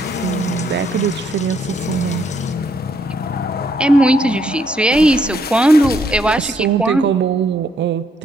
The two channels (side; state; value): both; normal; correlation 0.72